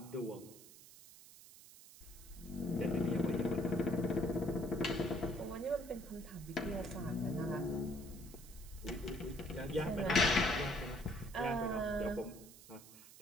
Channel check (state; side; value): noise; right; hiss, 19 dB below the sound